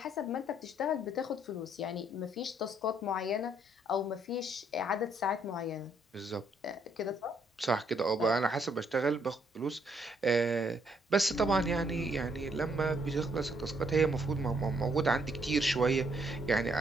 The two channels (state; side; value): normal; both; correlation 0.70